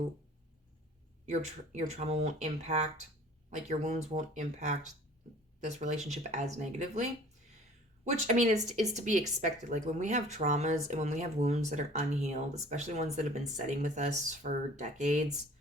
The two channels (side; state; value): both; normal; correlation 0.49